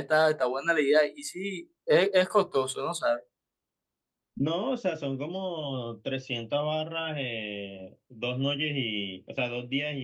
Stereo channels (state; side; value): identical; both; correlation 1.00